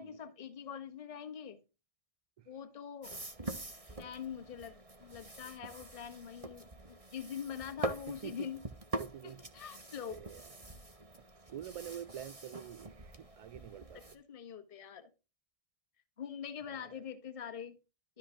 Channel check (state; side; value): late; left; 1.6 ms